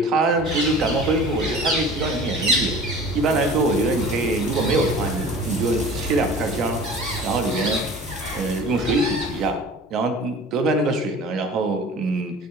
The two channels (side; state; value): both; normal; correlation 0.42